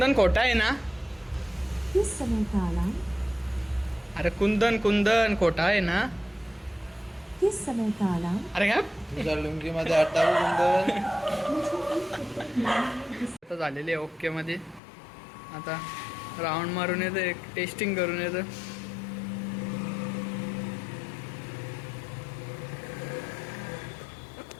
खोटा आहे ना. किस समय का अलार्म. अरे कुंदन कुंदन खोटा आहे ना. किस समय का अलार्म. अरे काय तुझ्या लुंगीमध्ये अट्टावी कुंदन. आता झालेले ओके मध्ये. आता राऊंड मारून येतं एक टेस्टिंग करून येतं.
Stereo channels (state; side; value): drops out; right; at 14.8 s